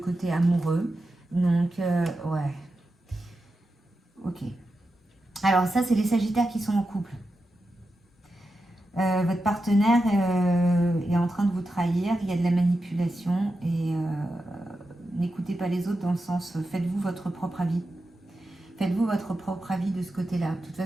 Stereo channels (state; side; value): normal; both; correlation 0.89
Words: amoureux. Donc, ouais. Ok. Alors ça, c'est les Sagittaires qui sont en couple. Votre partenaire est en train de vous trahir. Il y a de la manipulation et n'écoutez pas les autres dans le sens faites-vous votre propre avis. Faites-vous votre propre avis de ce côté-là. De toute